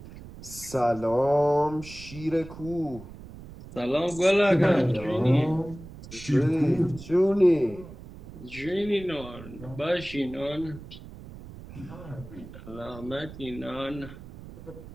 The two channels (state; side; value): noise; right; rumble, 15 dB below the sound